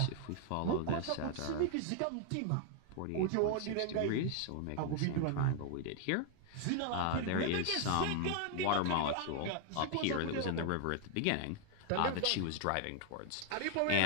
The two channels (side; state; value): both; different; correlation 0.00